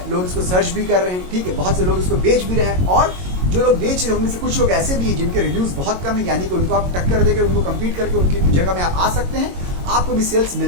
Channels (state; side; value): late; left; 22 ms